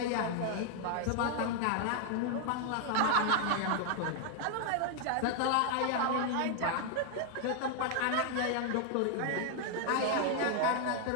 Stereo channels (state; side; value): different; both; correlation 0.00